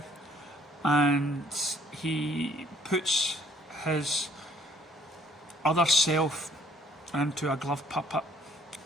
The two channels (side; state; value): both; normal; correlation 0.61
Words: and he puts his other self into a glove puppet,